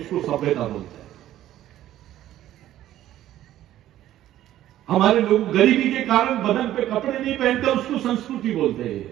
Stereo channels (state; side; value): quieter; left; 13.1 dB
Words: सभ्यता बोलते हैं। हमारे लोग गरीबी के कारण बदन पे कपड़े नहीं पहनते, उसको संस्कृति बोलते हैं।